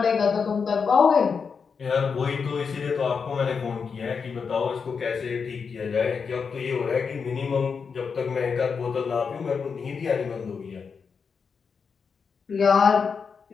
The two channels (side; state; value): right; quieter; 5.8 dB